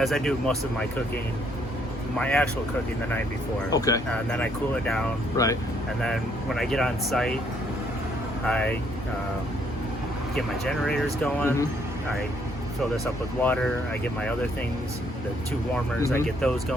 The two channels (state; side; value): normal; both; correlation 0.69